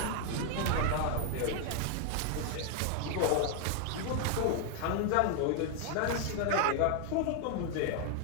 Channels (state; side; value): different; both; correlation 0.00